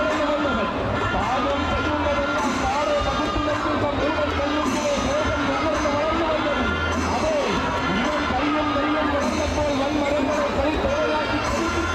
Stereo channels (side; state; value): both; identical; correlation 1.00